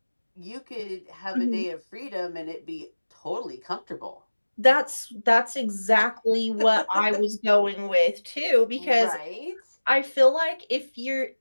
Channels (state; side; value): inverted; both; correlation -1.00